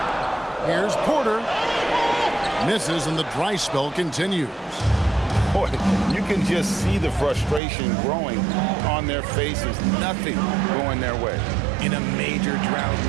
Here's Porter. Misses and the dry spell continues. boy, you can just see the frustration growing on their faces. Nothing going their way. In a major drought,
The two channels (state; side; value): drops out; left; at 7.6 s